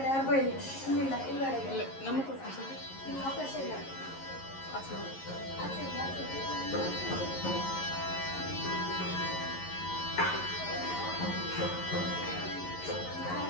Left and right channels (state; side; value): late; right; 11 ms